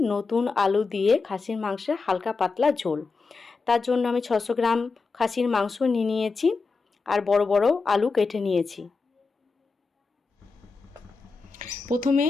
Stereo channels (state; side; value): quieter; right; 4.4 dB